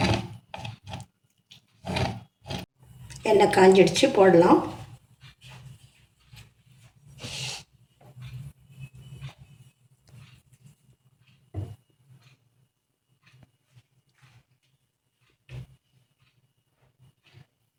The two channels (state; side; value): identical; both; correlation 1.00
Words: எண்ணெய் காஞ்சிடுச்சு, போடலாம்.